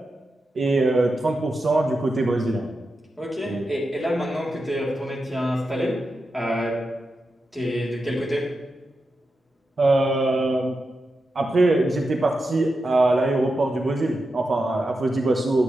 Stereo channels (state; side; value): normal; both; correlation 0.89